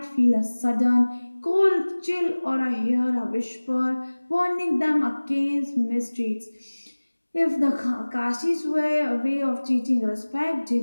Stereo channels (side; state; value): both; inverted; correlation -1.00